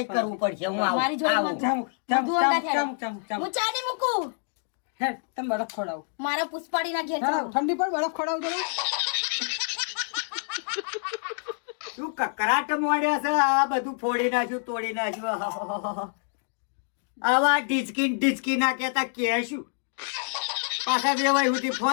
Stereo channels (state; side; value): silent; right; 60 dB below the other